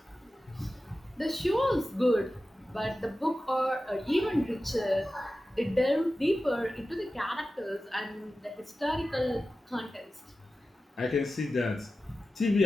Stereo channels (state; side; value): normal; both; correlation 0.94